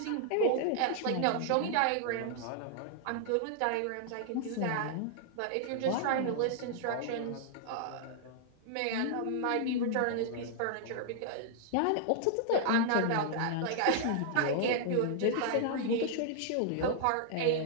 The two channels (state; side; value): different; both; correlation -0.01